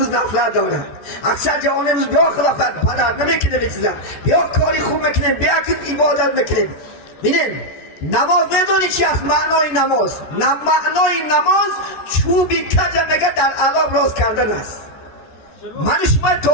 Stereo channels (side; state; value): right; late; 14 ms